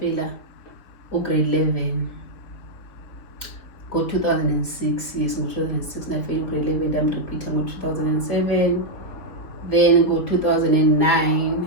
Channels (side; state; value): right; late; 3.8 ms